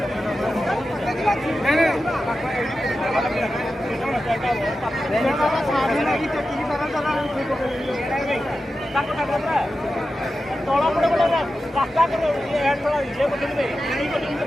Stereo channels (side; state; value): both; normal; correlation 0.92